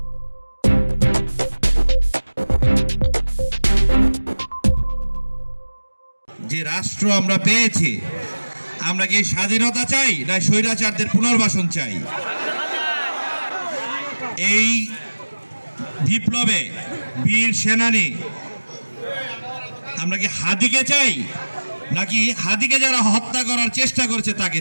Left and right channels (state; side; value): inverted; both; correlation -1.00